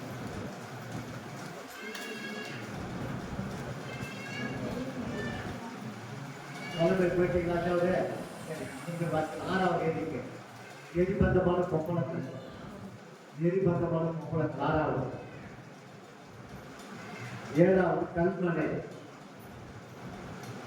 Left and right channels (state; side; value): identical; both; correlation 1.00